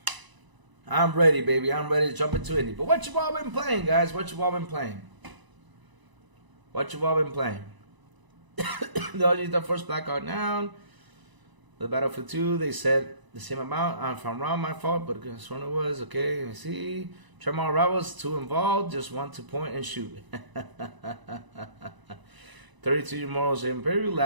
I'm ready, baby. I'm ready to jump into Indy. But what you all been playing, guys? What you all been playing? What you all been playing? The first Blackout down. The Battlefield 2, they said the same amount. If I'm wrong, my fault, but this one it was. Okay, let me see. Tremor Rivals, 2 involved, just 1 to point and shoot. 32 Morals Imperial,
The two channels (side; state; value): left; late; 1.0 ms